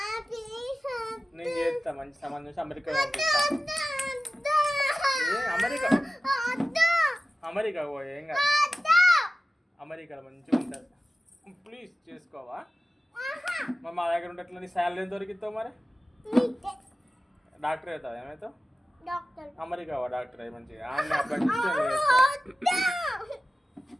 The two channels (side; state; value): both; normal; correlation 0.96